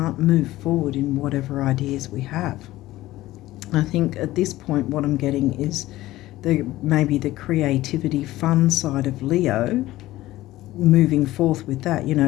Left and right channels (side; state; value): right; quieter; 16.5 dB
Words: move forward in whatever ideas we have. I think at this point what I'm getting is maybe the creativity, fun side of Leo, moving forth with that, you know,